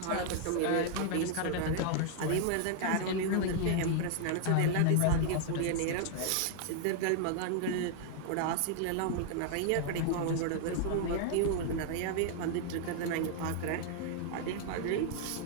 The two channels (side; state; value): both; different; correlation 0.00